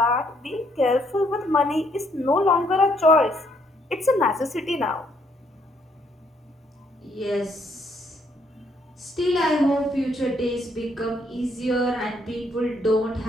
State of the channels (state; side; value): normal; both; correlation 0.70